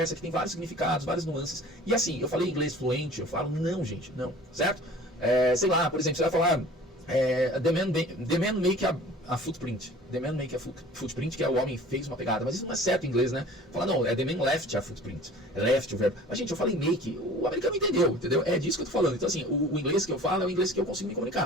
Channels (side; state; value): both; normal; correlation 0.45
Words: que tem vários significados, várias nuances. E assim, eu falei inglês fluente, eu falo, não, gente, não, certo? Sei lá, por exemplo, você vai falar the man make a footprint. The man make a footprint, que é o homem fez uma pegada. Mas isso não é certo em inglês, né? Fala, não, the man left a footprint. Left o verbo. Mas, gente, eu falei make, o americano entendeu? É disso que eu tô falando. Então, assim, o inglês que eu falo é o inglês que eu consigo me